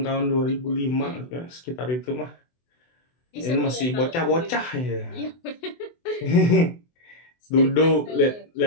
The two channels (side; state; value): right; late; 24 ms